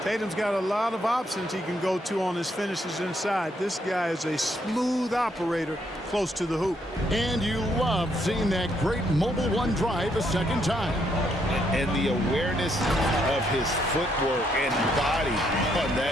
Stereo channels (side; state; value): both; normal; correlation 0.74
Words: Tatum's got a lot of options he can go to on his finishes inside. This guy is a smooth operator close to the hoop. And you love seeing that great mobile one drive a second time. And the awareness of his footwork and body on